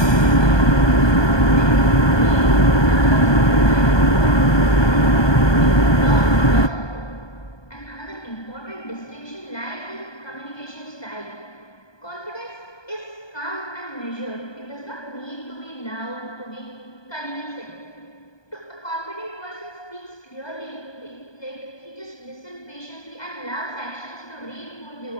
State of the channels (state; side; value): late; right; 1.2 ms